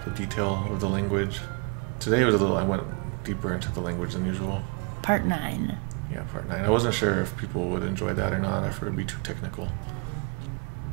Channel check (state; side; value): quieter; left; 33.5 dB